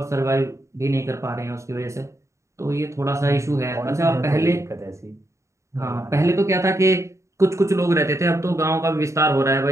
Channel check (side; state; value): left; late; 0.14 ms